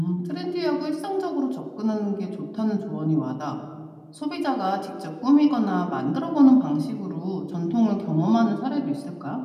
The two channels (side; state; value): both; identical; correlation 1.00